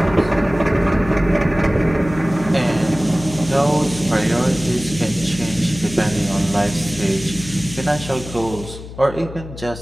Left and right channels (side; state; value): left; noise; hum, 13 dB below the sound